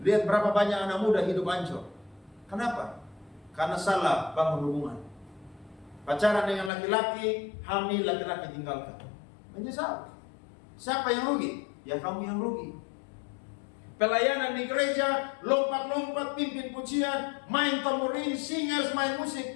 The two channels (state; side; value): drops out; right; at 6.7 s